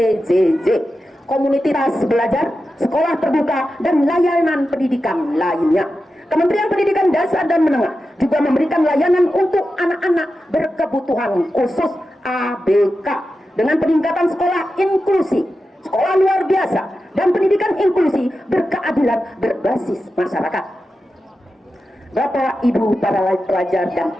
komunitas belajar, sekolah terbuka, dan layanan pendidikan lainnya. Kementerian Pendidikan Dasar dan Menengah juga memberikan layanan untuk anak-anak berkebutuhan khusus ABK dengan peningkatan sekolah inklusi, sekolah luar biasa, dan pendidikan inklusi berkeadilan berbasis masyarakat. Bapak, Ibu, para pelajar dan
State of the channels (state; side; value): normal; both; correlation 0.91